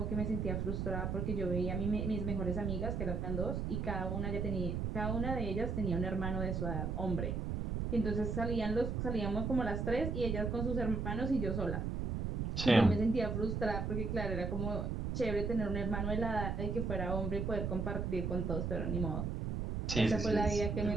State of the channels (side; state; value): right; noise; rumble, 1 dB below the sound